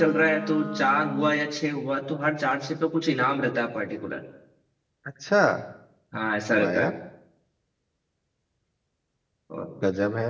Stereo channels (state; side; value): identical; both; correlation 1.00